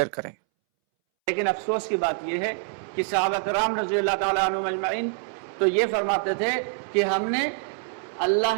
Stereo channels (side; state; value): left; silent; 61 dB below the other